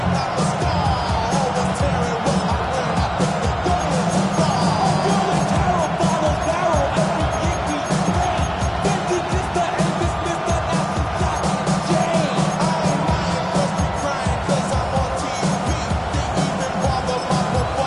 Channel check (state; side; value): identical; both; correlation 1.00